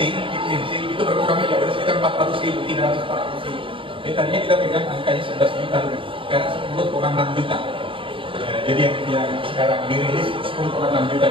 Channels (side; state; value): left; late; 0.25 ms